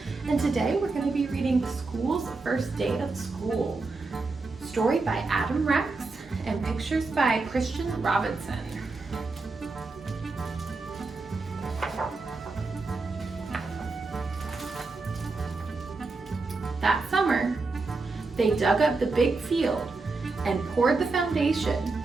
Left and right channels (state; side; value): quieter; left; 3.7 dB